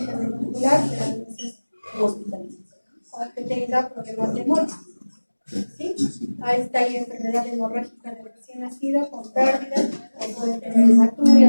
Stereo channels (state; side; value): inverted; both; correlation -1.00